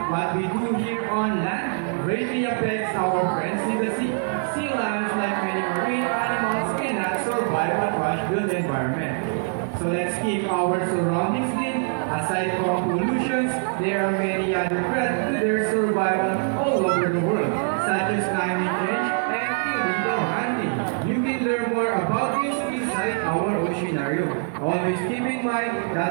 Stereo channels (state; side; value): silent; left; 60 dB below the other